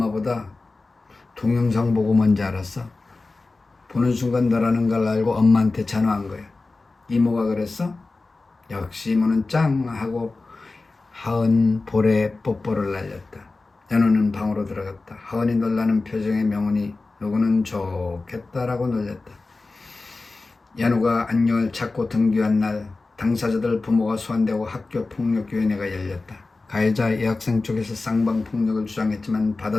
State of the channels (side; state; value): right; quieter; 3.5 dB